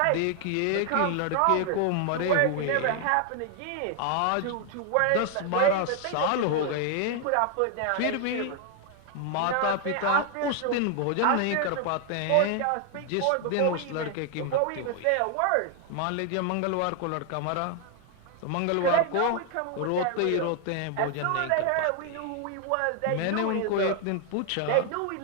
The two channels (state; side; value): different; both; correlation 0.00